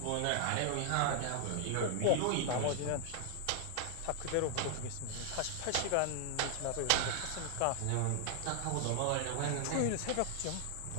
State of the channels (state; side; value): different; both; correlation -0.01